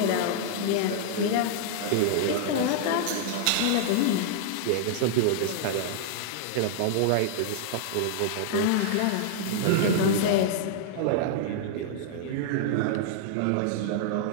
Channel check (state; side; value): different; both; correlation -0.01